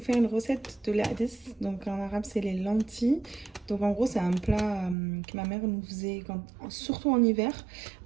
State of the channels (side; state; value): left; drops out; at 5.0 s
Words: faire une recette de l'adès. Donc en arabe, c'est les lentilles. Donc en gros, c'est un plat que ma mère nous faisait, surtout en hiver.